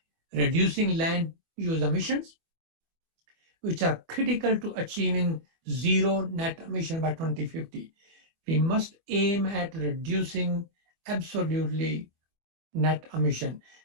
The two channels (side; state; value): left; late; 24 ms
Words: Reducing land use emissions, which are critical to achieving zero net emission by 2050. We must aim at reducing absolutely net emission.